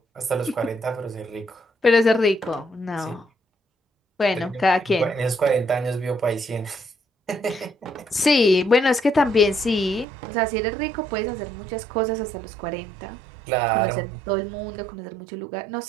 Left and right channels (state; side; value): drops out; left; at 10.1 s